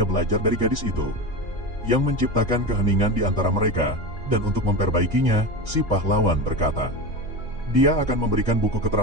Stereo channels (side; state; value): both; normal; correlation 0.23